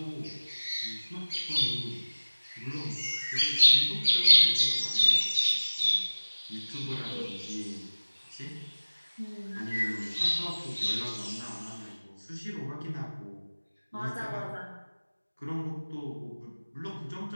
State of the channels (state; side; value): inverted; both; correlation -1.00